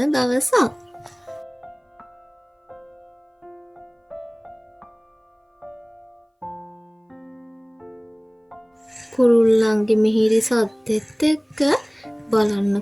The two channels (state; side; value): identical; both; correlation 1.00